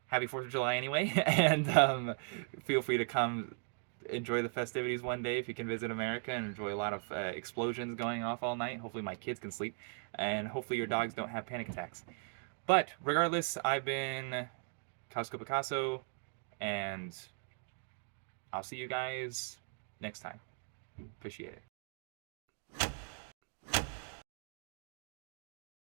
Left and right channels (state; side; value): silent; left; 52 dB below the other